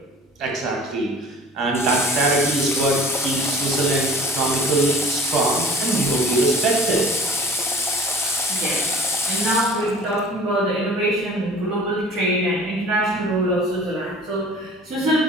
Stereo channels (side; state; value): both; normal; correlation 0.45